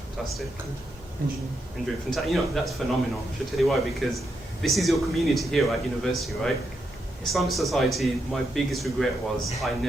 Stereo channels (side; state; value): both; normal; correlation 0.82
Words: fantastic. Engineering. Fantastic. You know, that's phenomenal. I should tell you why, because this is your community here at university, right? Islamic society, my biggest regret was I